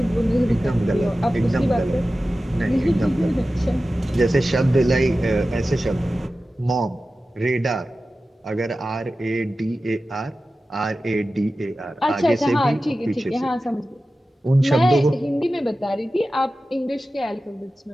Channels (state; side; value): normal; both; correlation 0.94